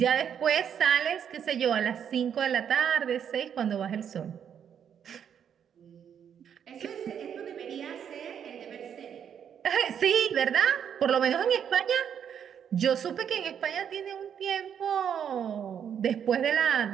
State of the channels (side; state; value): left; quieter; 8.4 dB